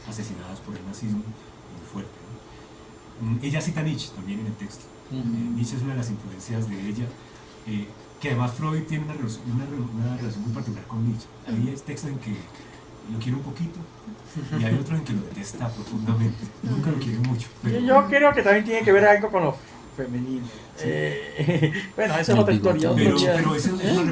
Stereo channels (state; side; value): identical; both; correlation 1.00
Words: asesinadas por el nazismo muy fuerte, ¿no? Ella cita a Nietzsche también en el texto. Nietzsche es una de las influencias de ella, que además Freud tiene una relación muy particular con Nietzsche. Hay textos en que lo quiere un poquito y hay otros en que lo detesta profundamente, nunca lo quiere mucho, pero yo creo que también tiene que ver algo con lo femenino. Sí. Bueno, esa es otra historia. Pero es una